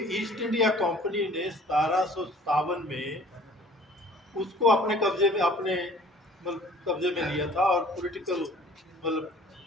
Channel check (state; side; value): normal; both; correlation 0.51